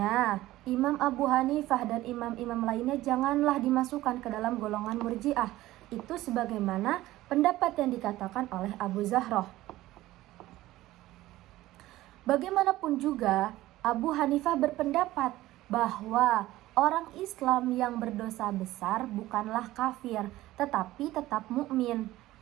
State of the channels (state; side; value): quieter; left; 16.3 dB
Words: Imam Abu Hanifah dan imam-imam lainnya janganlah dimasukkan ke dalam golongan Murji'ah. Itu sebagaimana pendapat yang dikatakan oleh Abu Zahroh. Bagaimanapun juga, Abu Hanifah berpendapat bahwa orang Islam yang berdosa besar bukanlah kafir, tetapi tetap mukmin.